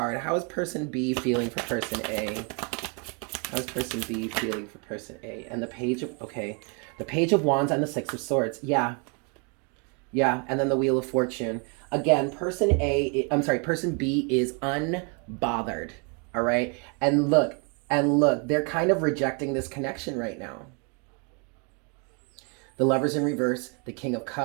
How is person B feeling for person A? How is person B feeling for person A? And the Page of Wands and the Six of Swords. Yeah, and then the Wheel of Fortune. Again, person B is unbothered, all right? And look, they're kind of rejecting this connection right now. The Lovers in reverse, the King of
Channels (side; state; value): left; quieter; 35.9 dB